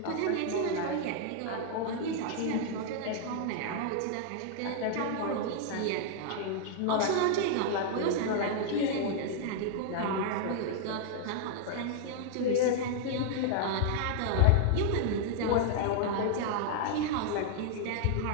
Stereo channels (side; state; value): both; different; correlation 0.00